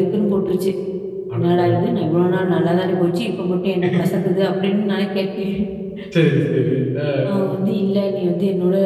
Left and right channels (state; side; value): identical; both; correlation 1.00